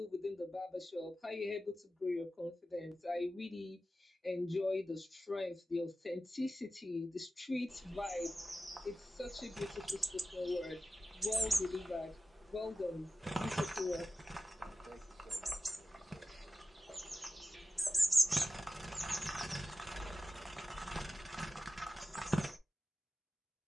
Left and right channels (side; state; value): both; normal; correlation 0.93